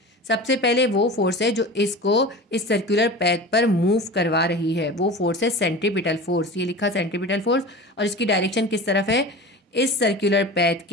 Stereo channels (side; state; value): both; normal; correlation 0.33